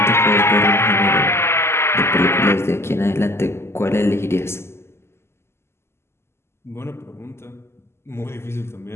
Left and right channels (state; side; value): late; right; 0.12 ms